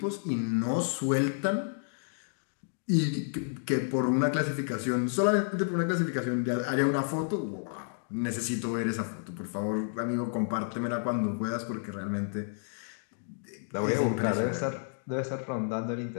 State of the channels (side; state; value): right; silent; digital silence